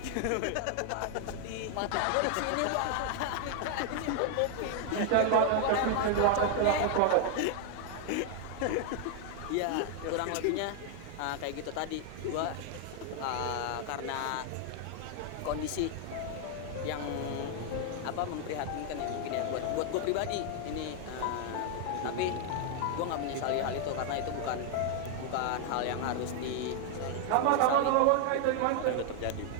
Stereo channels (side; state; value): both; different; correlation 0.00